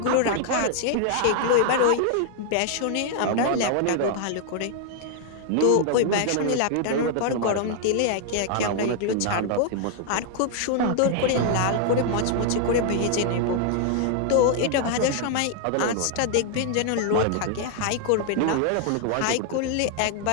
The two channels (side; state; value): both; different; correlation 0.00